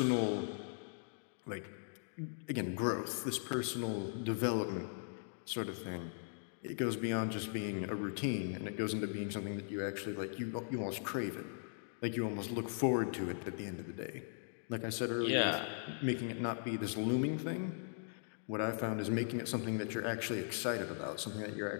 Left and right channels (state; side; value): silent; right; digital silence